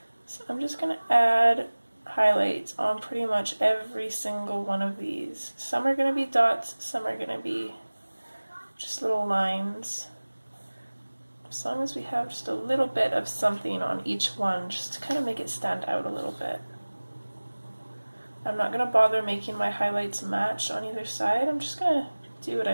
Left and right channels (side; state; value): both; inverted; correlation -1.00